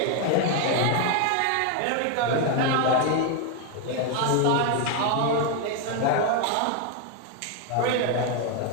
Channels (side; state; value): both; different; correlation 0.01